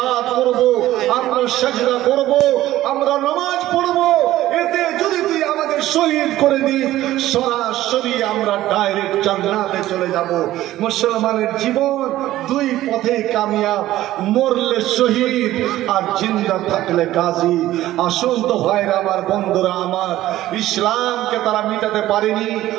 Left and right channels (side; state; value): left; quieter; 14.8 dB